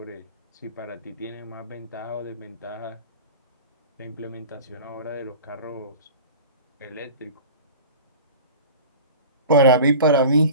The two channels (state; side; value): inverted; both; correlation -0.38